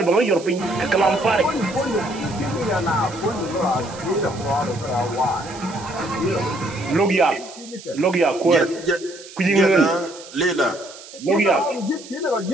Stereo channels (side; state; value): right; noise; hiss, 17 dB below the sound